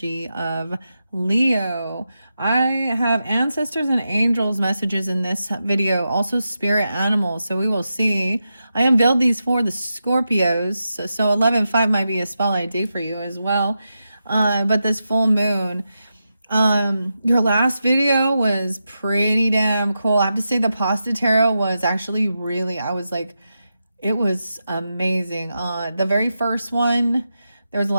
of Leo. I have ancestors and angels messages in this video, also spirit animals. So we will see. I unveiled these for the Scorpios. So 11/5 might be a spotlight day for you as well. But this full moon, your last video was pretty damn cool. I have to say the pasta tarot was actually really, I was like, it was amazing. The very first one, there was a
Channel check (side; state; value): both; inverted; correlation -0.89